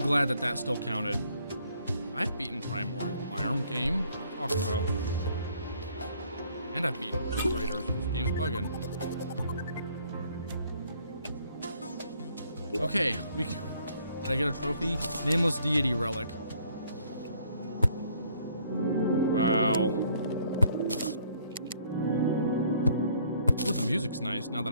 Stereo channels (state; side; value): inverted; both; correlation -0.63